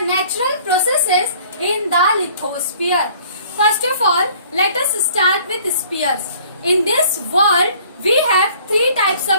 natural processes in the lithosphere. First of all, let us start with spheres. In this world, we have three types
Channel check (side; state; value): both; inverted; correlation -0.54